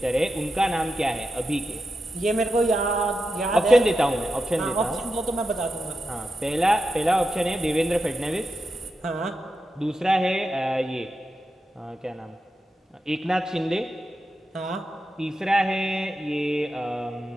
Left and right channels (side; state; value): both; normal; correlation 0.89